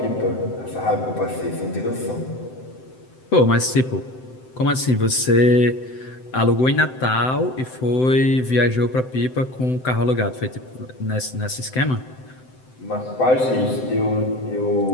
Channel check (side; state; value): right; late; 7.8 ms